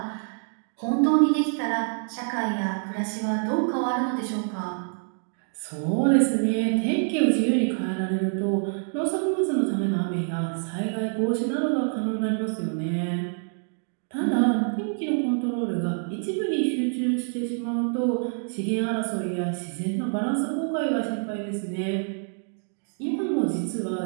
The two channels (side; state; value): left; silent; 61 dB below the other